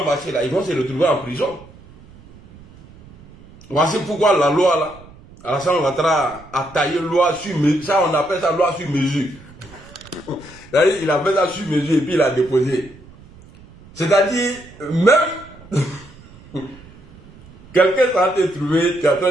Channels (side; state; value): right; noise; rumble, 22 dB below the sound